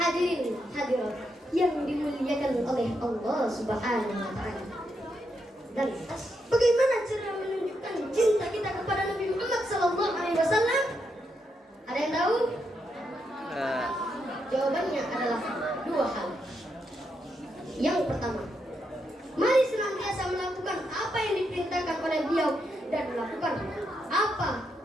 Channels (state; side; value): normal; both; correlation 0.81